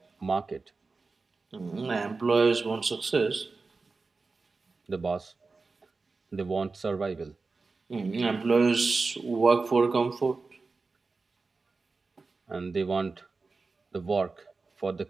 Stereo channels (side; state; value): left; quieter; 4.0 dB